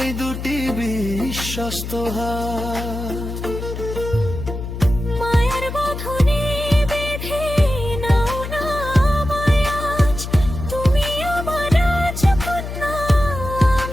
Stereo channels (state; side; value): noise; left; hum, 7 dB below the sound